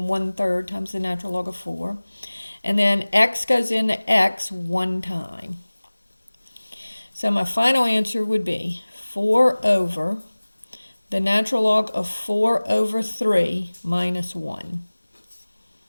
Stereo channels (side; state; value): both; inverted; correlation -1.00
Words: 1/3 times the natural log of 4. And then x goes into x one time. So my final answer would be 4 over the natural log of 4 over 3 minus 1